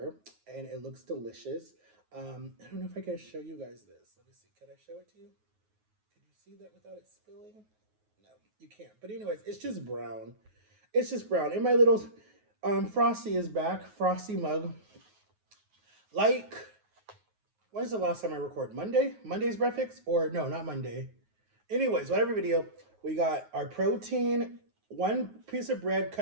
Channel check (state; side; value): late; left; 9.4 ms